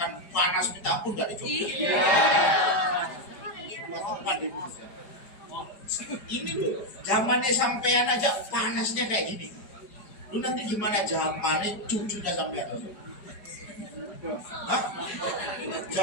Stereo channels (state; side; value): late; right; 4.9 ms